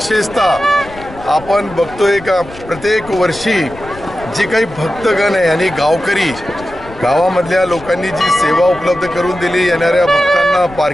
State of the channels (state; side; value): noise; left; rumble, 18 dB below the sound